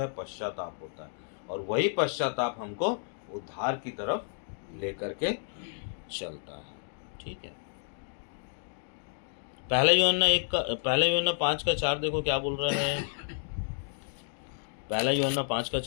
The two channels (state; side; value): silent; right; digital silence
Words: पश्चाताप होता है, और वही पश्चाताप हमको उद्धार की तरफ लेकर के चलता है। ठीक है। पहला यूहन्ना 5:4 देखो क्या बोल रहा है। पहला यूहन्ना